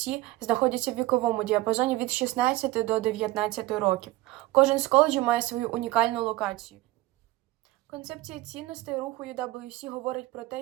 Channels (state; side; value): quieter; left; 18.1 dB